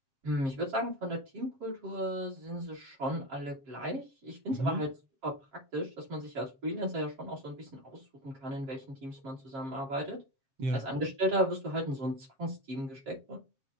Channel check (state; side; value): late; left; 7.4 ms